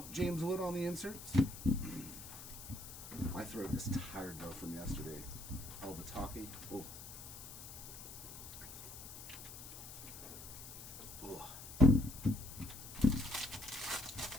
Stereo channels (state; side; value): noise; left; hiss, 12 dB below the sound